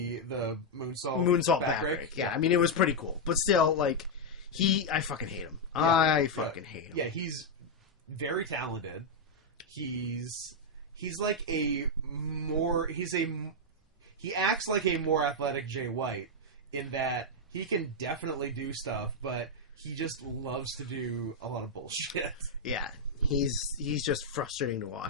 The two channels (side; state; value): both; normal; correlation -0.02